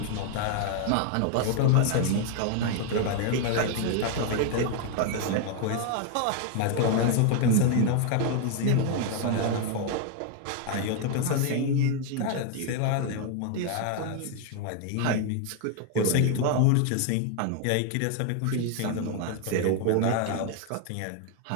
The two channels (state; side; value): different; both; correlation 0.01